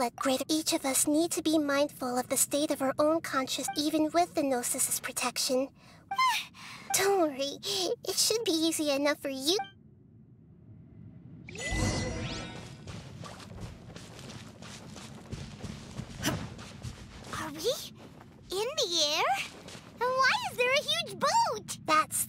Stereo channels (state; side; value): identical; both; correlation 1.00